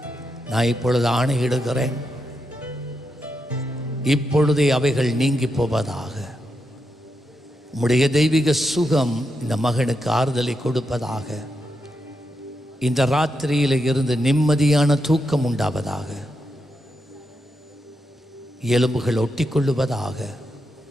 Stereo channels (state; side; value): normal; both; correlation 0.85